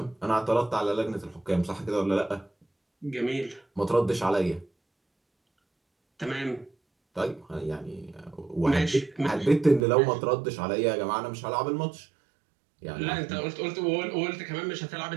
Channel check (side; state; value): left; drops out; at 9.9 s